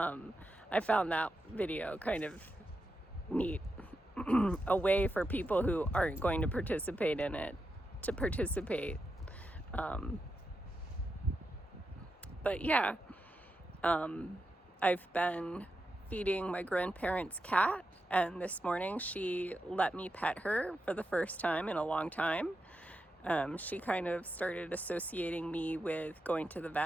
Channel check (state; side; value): normal; both; correlation 0.87